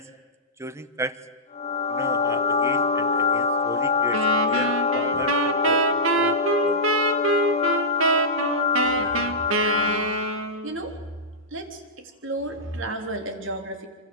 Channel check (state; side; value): normal; both; correlation -0.15